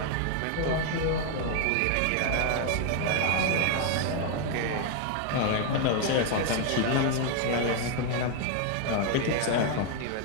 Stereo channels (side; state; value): both; different; correlation 0.00